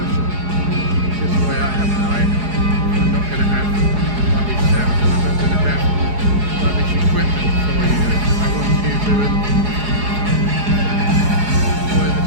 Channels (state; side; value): late; left; 4.8 ms